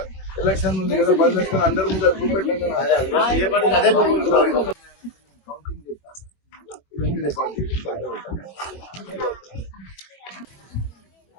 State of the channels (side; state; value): right; late; 21 ms